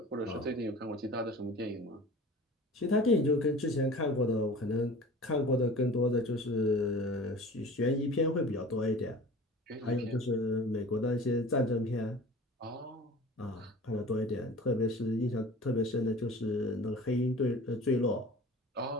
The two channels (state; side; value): normal; both; correlation 0.41